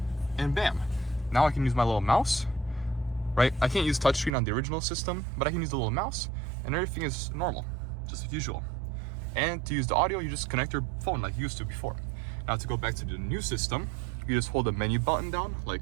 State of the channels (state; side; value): drops out; left; at 4.3 s